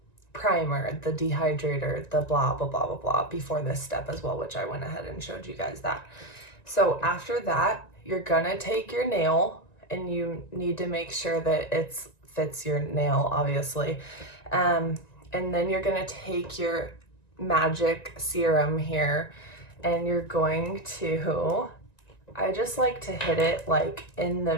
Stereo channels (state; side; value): late; right; 1.9 ms